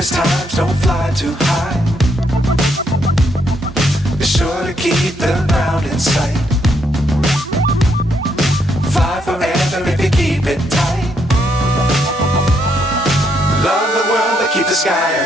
Times don't fly too high. Be sure to keep the ground in sight. Fly forever if you keep it tight. Love the world, but keep the sky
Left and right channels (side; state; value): both; normal; correlation 0.75